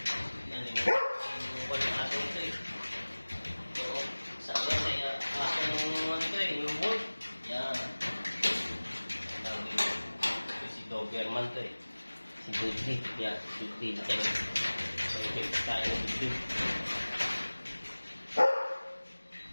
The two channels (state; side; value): inverted; both; correlation -1.00